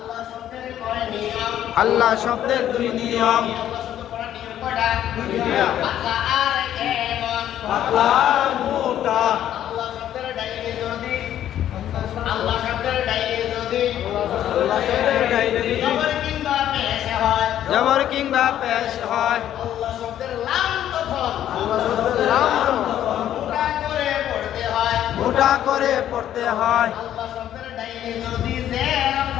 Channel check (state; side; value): quieter; right; 11.3 dB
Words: শব্দের কয় নিয়ম? আল্লাহ শব্দের 2 নিয়ম। আল্লাহ শব্দ পড়ার নিয়ম কয়টা? 2টা। পাতলা আর কেমন? পাতলা আর মোটা। আল্লাহ শব্দের ডাইনে যদি, আল্লাহ শব্দের ডাইনে যদি আল্লাহ শব্দের ডাইনে যদি জবর কিংবা পেশ হয়, জবর কিংবা পেশ হয়, আল্লাহ শব্দের লাম তখন আল্লাহ শব্দের লাম মোটা করে পড়তে হয়। মোটা করে পড়তে হয়। আল্লাহ শব্দের ডাইনে যদি জের